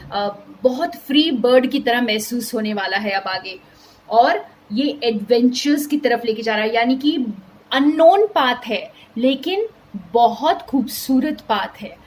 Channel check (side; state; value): both; identical; correlation 1.00